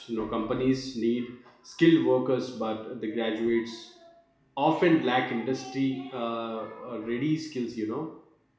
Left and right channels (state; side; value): identical; both; correlation 1.00